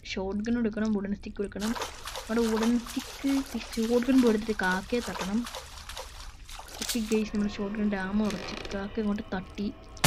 ഷോട്ട് ഗൺ എടുക്കണം, വുഡൻ സ്റ്റിക്ക് എടുക്കണം. നമ്മുടെ വുഡൻ സ്റ്റിക്ക് ഷോട്ട് ഗൺ എടുത്തിട്ട് കാക്കയെ തട്ടണം. ഓക്കെ ഗൈസ് നമ്മുടെ ഷോട്ട് ഗൺ ഡാമ ഉറച്ച് കാക്ക ഇങ്ങോട്ട് തട്ടി.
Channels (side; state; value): both; identical; correlation 1.00